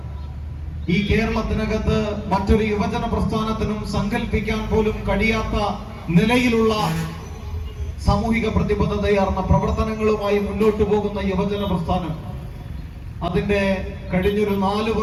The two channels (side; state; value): both; identical; correlation 1.00